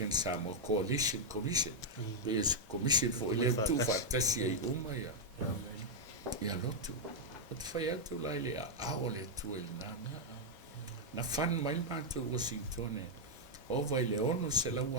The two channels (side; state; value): both; normal; correlation -0.02